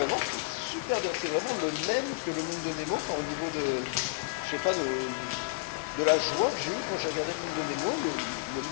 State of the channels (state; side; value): quieter; right; 26.1 dB